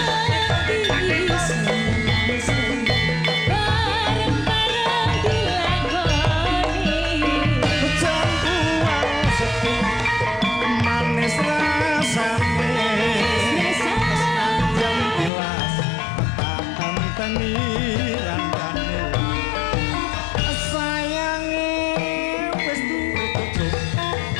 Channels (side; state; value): right; drops out; at 15.3 s